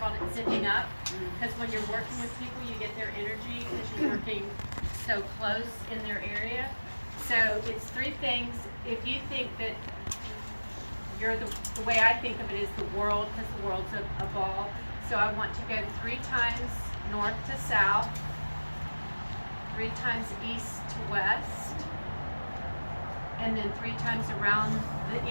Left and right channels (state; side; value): inverted; both; correlation -1.00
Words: it zipping up. Because when you're working with people, you get their energy because you're working so close in their area. So it's three things. If you think that you're the way I think of it is the world, because the world's a ball. So I want to go 3 times north to south, 3 times east to west, and then 3 times around the